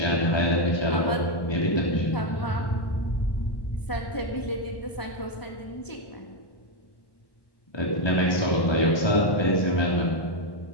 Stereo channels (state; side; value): late; right; 1.1 ms